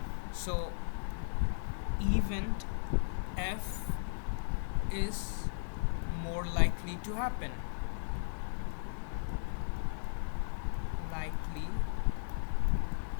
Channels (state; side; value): silent; right; 54 dB below the other